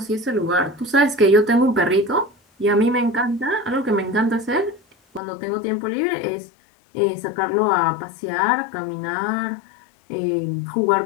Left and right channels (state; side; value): drops out; right; at 5.2 s